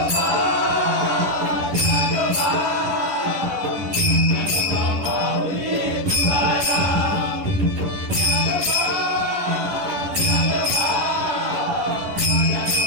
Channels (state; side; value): late; left; 10 ms